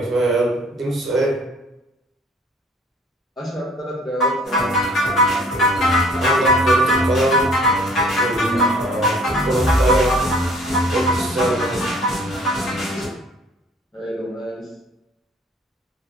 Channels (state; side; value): normal; both; correlation 0.54